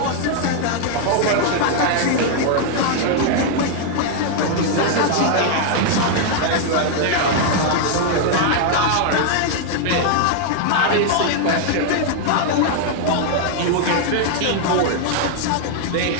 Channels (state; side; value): different; both; correlation 0.00